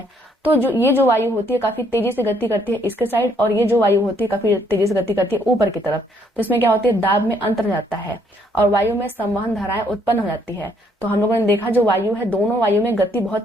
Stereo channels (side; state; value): both; normal; correlation 0.68